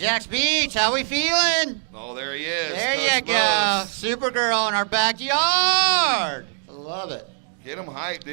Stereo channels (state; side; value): silent; left; digital silence